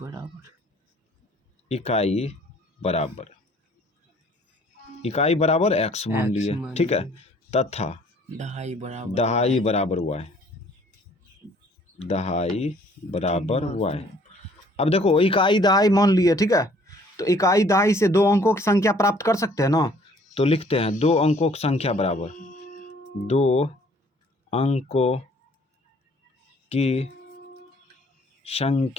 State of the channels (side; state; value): both; normal; correlation 0.58